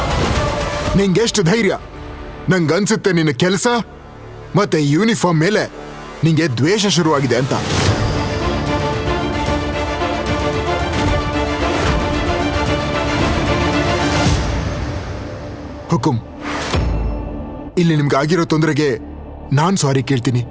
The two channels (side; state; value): both; identical; correlation 1.00